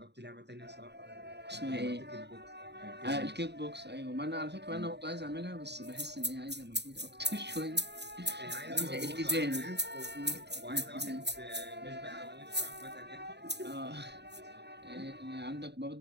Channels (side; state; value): left; late; 0.50 ms